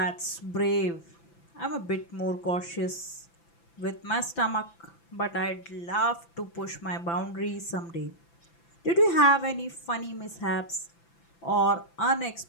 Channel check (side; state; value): right; late; 5.9 ms